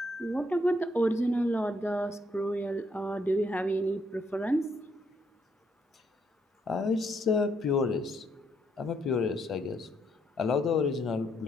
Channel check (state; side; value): normal; both; correlation 0.74